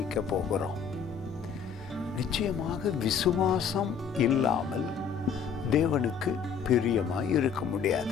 போகிறோம். நிச்சயமாக விசுவாசம் இல்லாமல் தேவனுக்கு பிரியமாய் இருக்க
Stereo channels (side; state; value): right; quieter; 6.7 dB